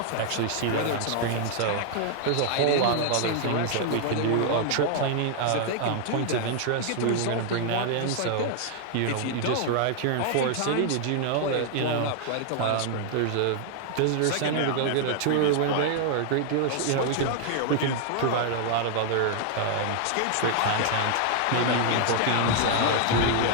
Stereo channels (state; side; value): different; both; correlation 0.00